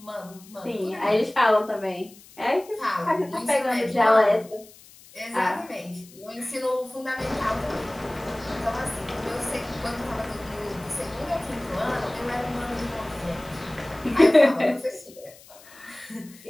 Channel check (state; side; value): noise; left; hiss, 22 dB below the sound